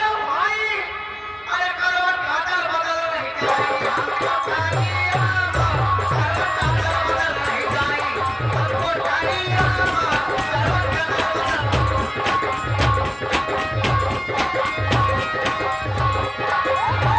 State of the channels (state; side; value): identical; both; correlation 1.00